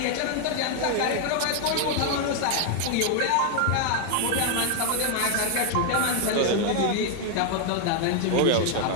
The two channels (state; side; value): different; both; correlation 0.00